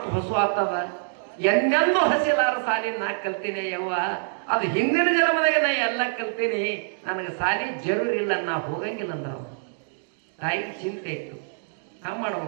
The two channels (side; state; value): left; silent; digital silence